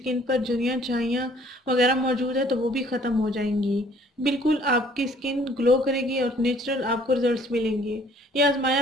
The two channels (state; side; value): normal; both; correlation 0.58